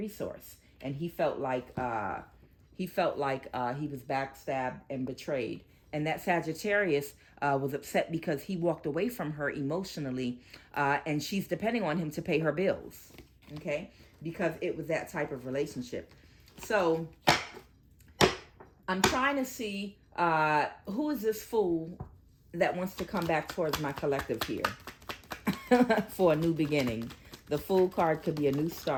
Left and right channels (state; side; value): identical; both; correlation 1.00